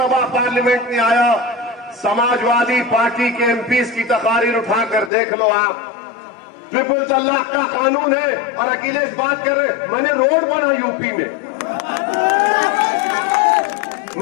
पार्लियामेंट में आया, समाजवादी पार्टी के एमपीज की तकारीर उठाकर देख लो आप। ट्रिपल तलाक का कानून है और अखिलेश बात कर रहे, मैंने रोड बना यूपी में,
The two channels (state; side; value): drops out; right; at 5.1 s